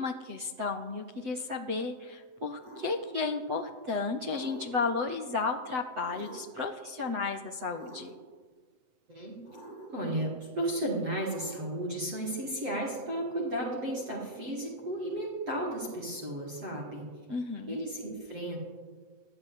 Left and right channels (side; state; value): left; late; 7.9 ms